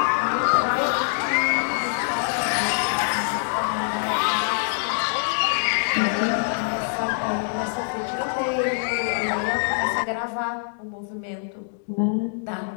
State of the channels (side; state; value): right; silent; digital silence